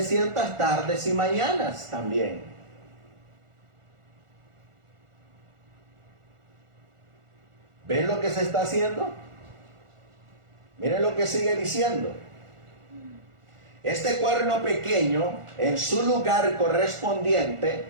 tardes y mañanas también. ¿Ven lo que se está haciendo? Miren lo que sigue diciendo. Este cuerno pequeño, en su lugar correspondiente,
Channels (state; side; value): late; left; 1.4 ms